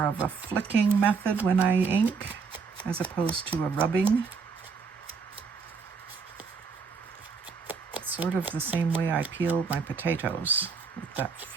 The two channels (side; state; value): left; quieter; 5.2 dB